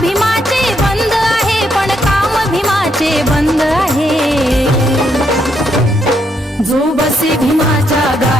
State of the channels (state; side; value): normal; both; correlation 0.76